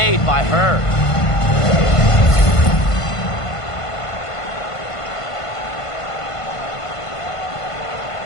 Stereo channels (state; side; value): late; right; 1.5 ms